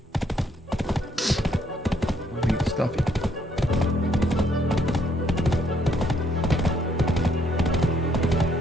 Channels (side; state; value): both; normal; correlation 0.70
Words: Let me get stuffy.